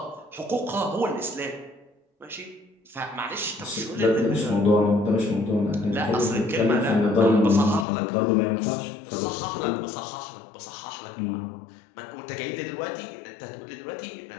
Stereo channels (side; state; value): right; drops out; at 7.9 s